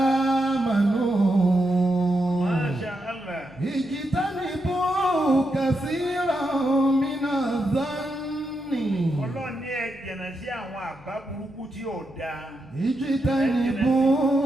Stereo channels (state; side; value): normal; both; correlation 0.84